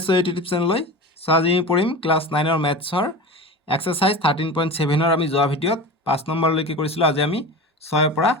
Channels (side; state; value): both; normal; correlation 0.31